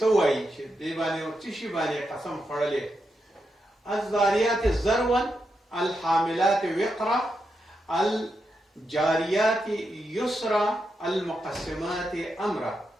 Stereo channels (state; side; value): normal; both; correlation 0.85